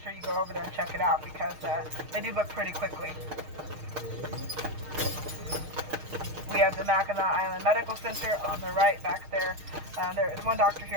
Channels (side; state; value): left; late; 6.5 ms